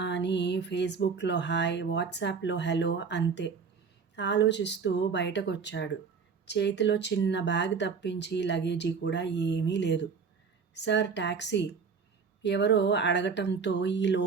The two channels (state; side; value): quieter; left; 5.6 dB